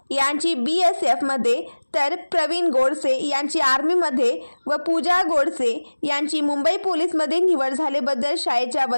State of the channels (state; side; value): inverted; both; correlation -1.00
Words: यांची BSF मध्ये, तर प्रवीण गोडसे यांची आर्मी मध्ये व पूजा गोडसे यांची मुंबई पोलीस मध्ये निवड झाल्याबद्दल शाळेच्या